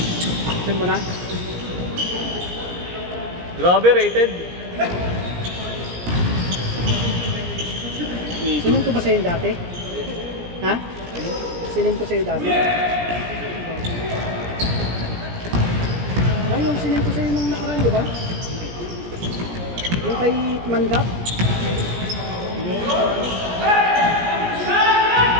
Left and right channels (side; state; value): left; late; 17 ms